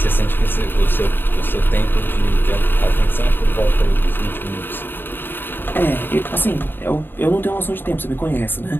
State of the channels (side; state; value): right; late; 0.097 ms